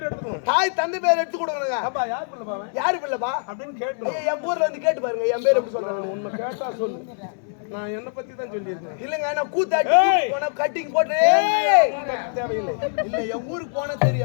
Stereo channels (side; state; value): right; silent; digital silence